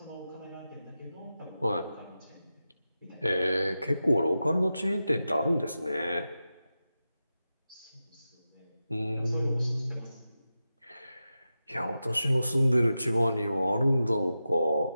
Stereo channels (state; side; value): inverted; both; correlation -0.92